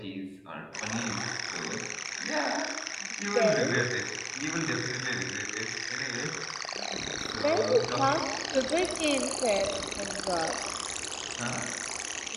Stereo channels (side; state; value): both; identical; correlation 1.00